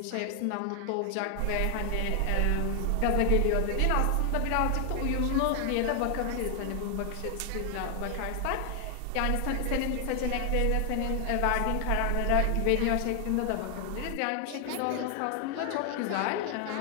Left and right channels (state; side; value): different; both; correlation 0.00